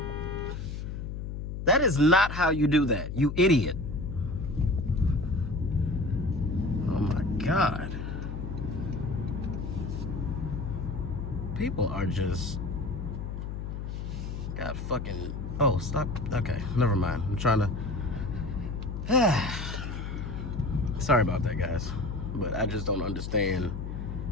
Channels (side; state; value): left; noise; hum, 5 dB below the sound